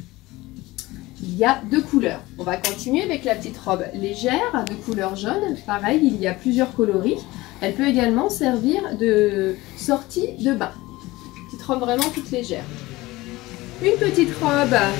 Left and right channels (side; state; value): right; quieter; 19.6 dB